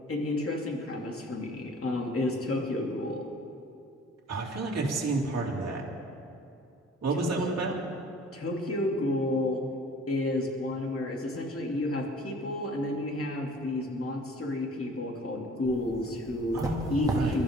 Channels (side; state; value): both; normal; correlation 0.50